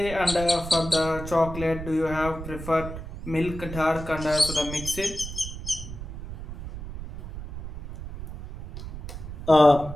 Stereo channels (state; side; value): noise; right; rumble, 10 dB below the sound